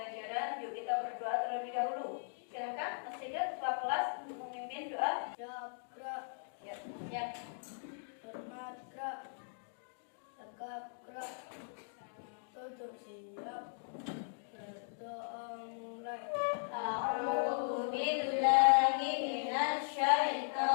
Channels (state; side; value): silent; right; digital silence